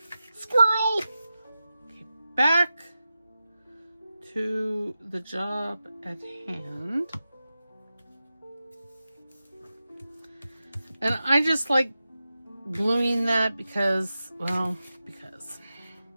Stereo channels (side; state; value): both; inverted; correlation -0.93